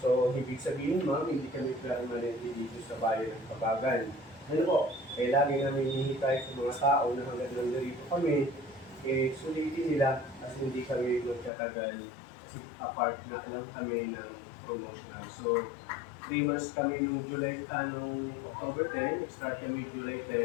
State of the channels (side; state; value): right; drops out; at 11.5 s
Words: So, ibig sabihin ma'am, hindi kami permanente dito sa bayan ng Kabagan. Ano po? Kaya lagi namin hinihintay sa mga tao na hanggang nandito kami, sulitin nila kasi hindi kami magkatagal kasi apart na alam kami ng promotional. So, 3 months kami nung October 10, start kami July